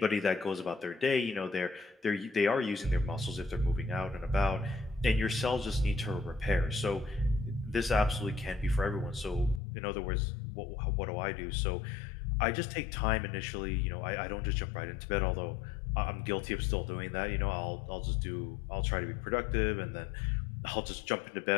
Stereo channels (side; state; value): right; drops out; at 9.6 s